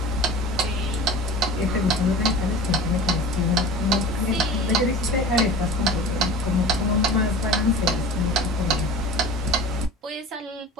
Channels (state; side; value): normal; both; correlation 0.37